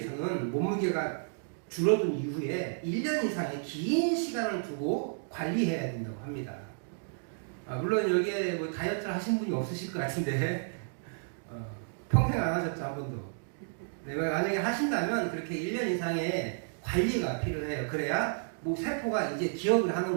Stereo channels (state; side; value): silent; left; digital silence